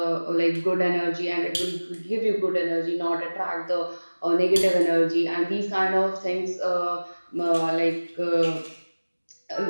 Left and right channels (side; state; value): both; inverted; correlation -1.00